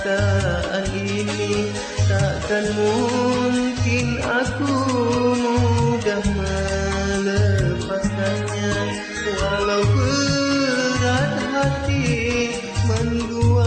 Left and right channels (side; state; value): both; identical; correlation 1.00